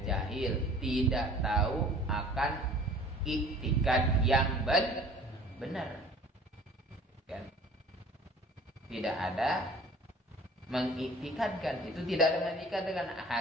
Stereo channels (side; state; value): both; normal; correlation 0.48